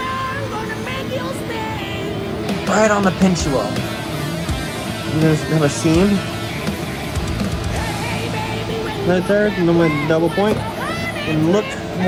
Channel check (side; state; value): both; identical; correlation 1.00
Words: Right on the pinch wheel. I'm gonna have a seam right there, and then my double point. And look